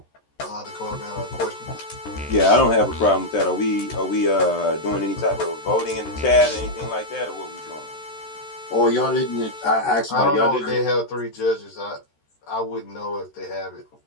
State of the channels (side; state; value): right; late; 13 ms